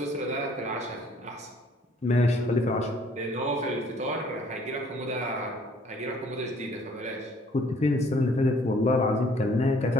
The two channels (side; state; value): both; normal; correlation 0.59